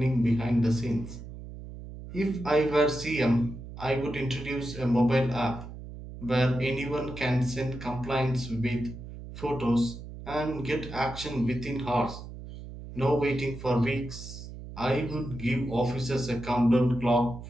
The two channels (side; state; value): right; noise; hum, 12 dB below the sound